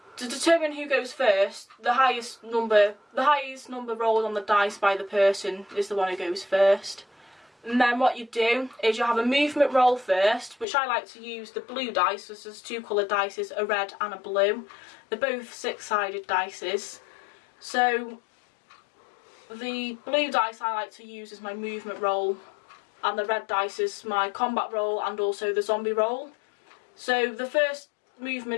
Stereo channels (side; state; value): right; drops out; at 10.7 s